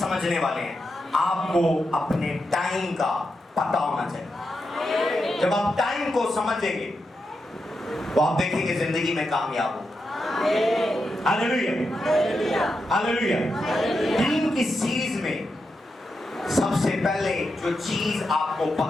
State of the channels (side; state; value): both; normal; correlation 0.86